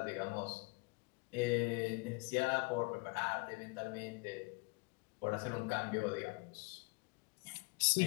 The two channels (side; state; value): right; quieter; 30.6 dB